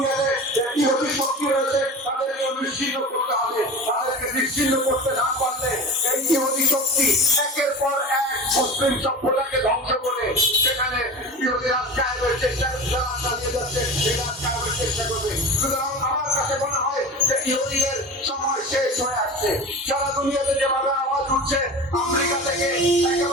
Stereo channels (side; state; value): both; normal; correlation 0.31